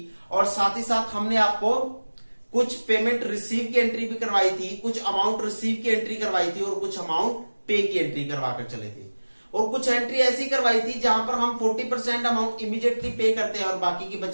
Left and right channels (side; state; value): both; inverted; correlation -1.00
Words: और साथ ही साथ हमने आपको कुछ पेमेंट रिसीव की एंट्री भी करवाई थी, कुछ अमाउंट रिसीव की एंट्री करवाई थी और कुछ अमाउंट पे की एंट्री करवाकर चले थे। और कुछ एंट्री ऐसी करवाई थी जहां पर हम 40% अमाउंट इमीडिएटली पे करते हैं और बाकी की